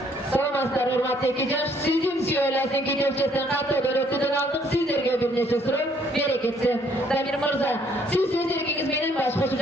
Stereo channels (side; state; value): both; normal; correlation 0.65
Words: Саламатсыздар, урматтуу экижаш. Сиздин сүйөйлөрдүн кедепчесин каттоодон өтүүдөн алдык. Сиздерге бир нече суроо берекетси. Дамир мырза, сиз өз эркиңиз менен баш кошуп